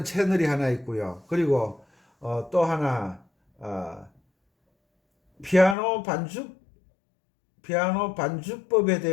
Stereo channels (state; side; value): drops out; right; at 5.8 s